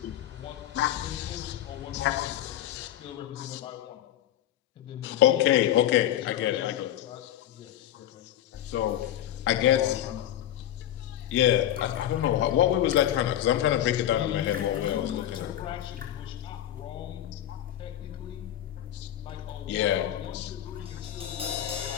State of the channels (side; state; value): right; quieter; 11.9 dB